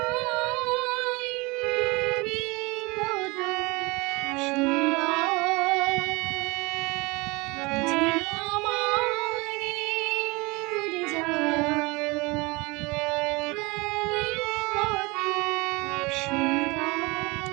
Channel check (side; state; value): left; quieter; 25.0 dB